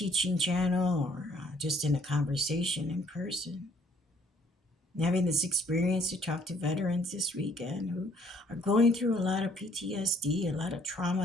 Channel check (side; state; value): both; normal; correlation 0.63